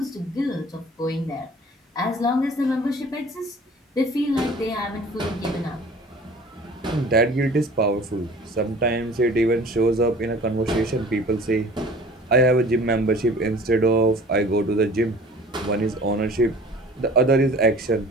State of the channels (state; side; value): normal; both; correlation 0.46